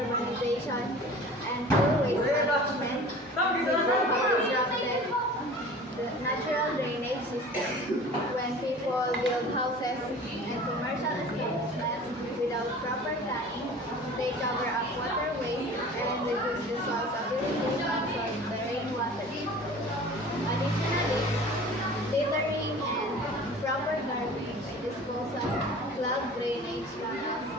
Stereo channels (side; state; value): both; normal; correlation 0.42